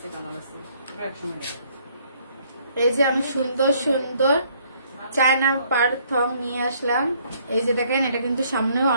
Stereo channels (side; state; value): both; inverted; correlation -0.65